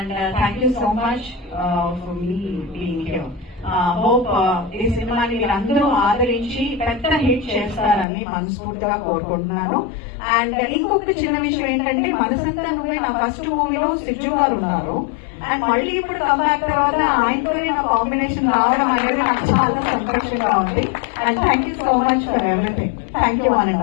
thank you so much for me being here. Hope ఈ సినిమాని మీరందరూ ఆదరించి పెద్ద హిట్ చేస్తారని మనస్ఫూర్తిగా కోరుకుంటున్నాను. అండ్ ఇంకొకటి చిన్న విషయం ఏంటంటే మనసంతా నువ్వే నా ఫస్ట్ మూవీలో సిజు గారు ఉన్నారు. అండ్ మళ్ళీ ఇప్పుడు కంబ్యాక్ తర్వాత ఆయనతోనే నా కాంబినేషన్ రావడం అనేది నాకు చాలా సంతోషంగా ఉంది. And thank you so much for everything. Thank you one and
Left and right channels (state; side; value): drops out; right; at 8.1 s